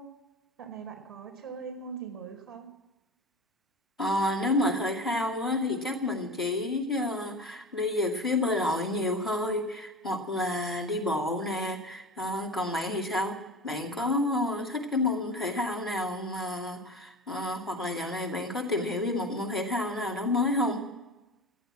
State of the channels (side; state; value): both; normal; correlation 0.31